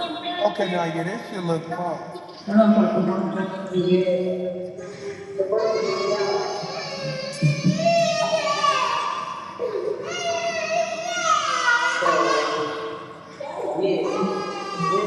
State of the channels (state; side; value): identical; both; correlation 1.00